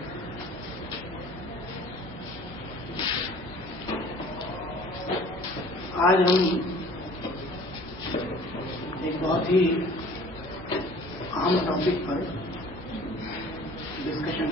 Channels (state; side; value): normal; both; correlation 0.48